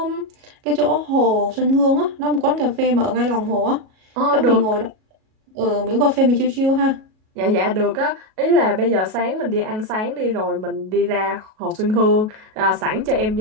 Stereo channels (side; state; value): left; late; 37 ms